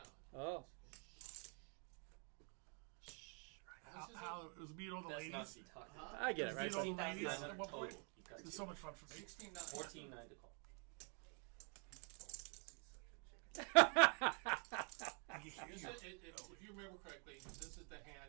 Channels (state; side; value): quieter; left; 38.5 dB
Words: Oh. How? It was me and all the That's ladies. not to be talking about. I get it, It right? was me and all the 16-9 ladies at one total. point. You got It was two. so much fun for me. 16-9. 14-9 to call. If you remember correctly, this is the